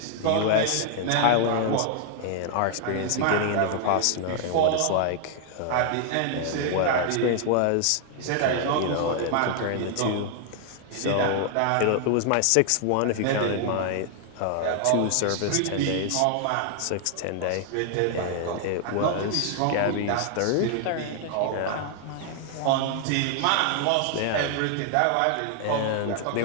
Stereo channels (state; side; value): different; both; correlation 0.00